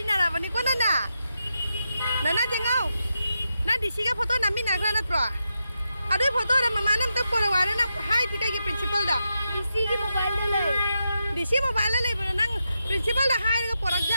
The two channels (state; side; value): inverted; both; correlation -0.86